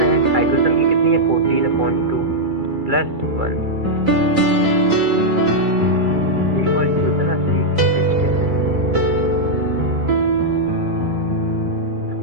है। हाइड्रोजन की कितनी है? 14 अपॉन 2 प्लस 1। यही मॉलिक्यूल था ना C8H10।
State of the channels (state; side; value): late; left; 2.3 ms